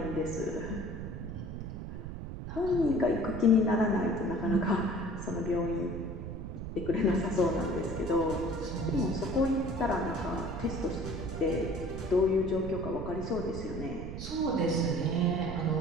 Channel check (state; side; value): noise; right; rumble, 7 dB below the sound